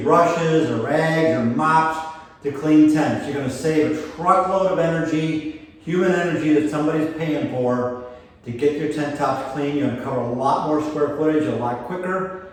brushes or rags or mops to clean tents. You're going to save a truckload of energy, human energy that somebody's paying for to get your tent tops clean. You're going to cover a lot more square footage a lot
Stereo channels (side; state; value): both; identical; correlation 1.00